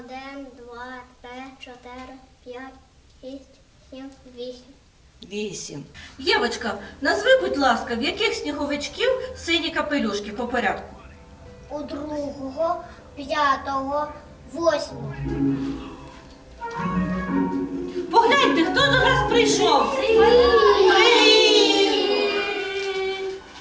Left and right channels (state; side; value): identical; both; correlation 1.00